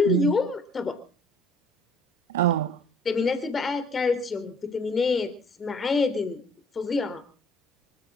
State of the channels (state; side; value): normal; both; correlation 0.55